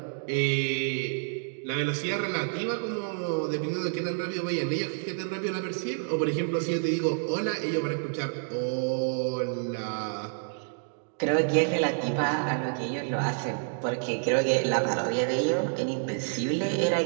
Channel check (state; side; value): silent; left; digital silence